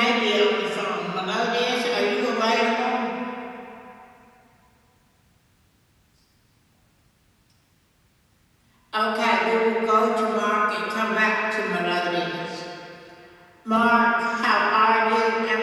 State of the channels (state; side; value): identical; both; correlation 1.00